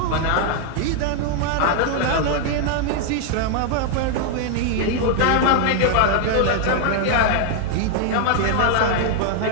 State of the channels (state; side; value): different; both; correlation 0.00